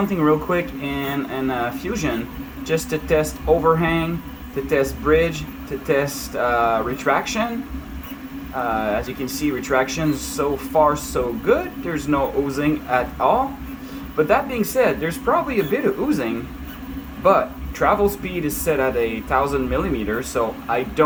real quick in Fusion just to test overhang, to test bridge, to test retraction. As you can see, retraction so far so good. There's no oozing at all. But that being said, there's probably a bit of oozing, but travel speed is set at 1,000 millimeters, so I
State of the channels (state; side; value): identical; both; correlation 1.00